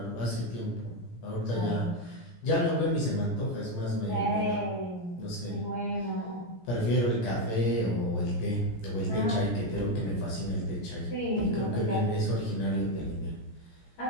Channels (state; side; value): late; right; 17 ms